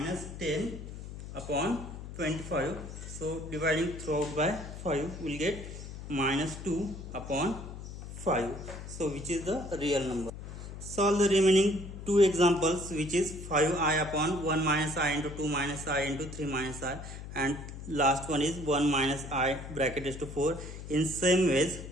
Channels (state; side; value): noise; left; hum, 10 dB below the sound